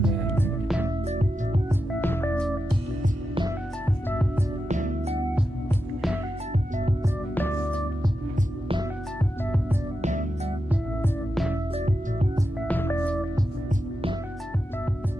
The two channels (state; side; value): normal; both; correlation 0.89